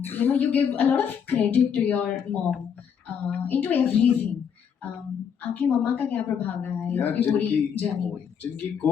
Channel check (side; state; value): right; quieter; 7.5 dB